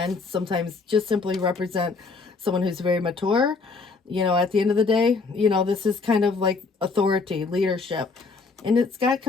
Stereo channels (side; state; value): right; quieter; 4.3 dB